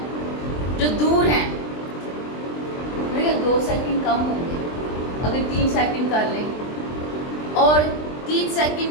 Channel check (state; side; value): late; right; 23 ms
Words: جو دور ہیں، 2 سیکنڈ کم ہوں گے اگر 3 سیکنڈ کر لیں، اور 3 سیکنڈ